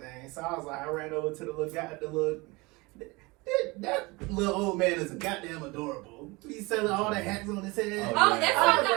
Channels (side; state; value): left; quieter; 24.5 dB